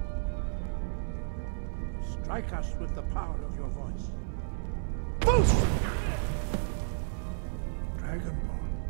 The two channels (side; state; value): left; silent; 56 dB below the other